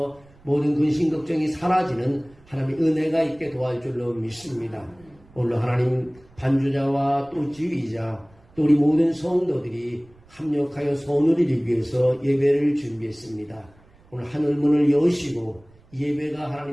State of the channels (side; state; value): right; noise; rumble, 28 dB below the sound